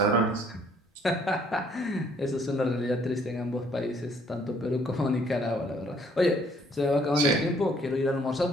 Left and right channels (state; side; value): normal; both; correlation 0.63